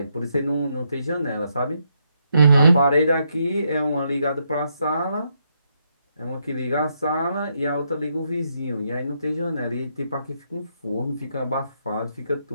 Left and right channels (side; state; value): both; inverted; correlation -0.78